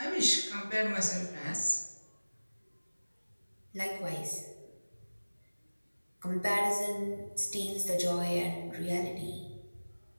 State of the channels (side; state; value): both; inverted; correlation -1.00